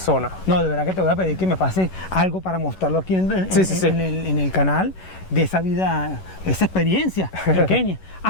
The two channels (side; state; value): right; late; 11 ms